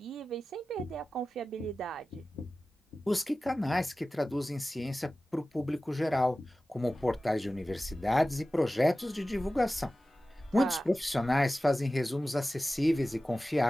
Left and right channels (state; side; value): normal; both; correlation 0.96